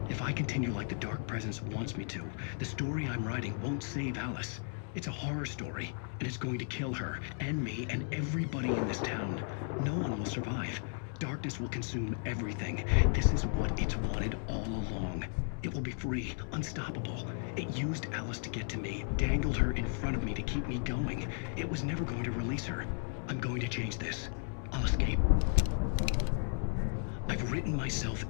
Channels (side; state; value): right; silent; 55 dB below the other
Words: If I continue like the Dark Presence wants me to, the story I'm writing won't save Alice. It's a horror story, and it's going to kill her, and me, and everybody in this town. No one will survive. Darkness will consume everything. This is what it's wanted all along. It will be free, unstoppable. It used Alice to get to me, dangled her in front of me to keep me going. It was never going to release her. I'm going to change this. I'll escape. I've written myself